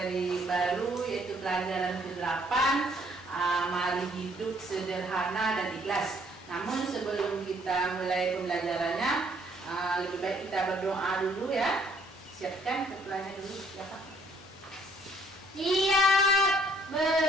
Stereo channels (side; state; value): both; normal; correlation 0.64